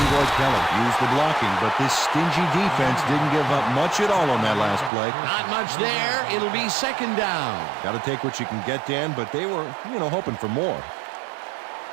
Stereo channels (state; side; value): drops out; left; at 4.9 s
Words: Keller used the blocking, but this stingy defense didn't give up much at all on that last play. Not much there. It'll be 2nd down. Got to take what you can get, Dan, but they were, hoping for more.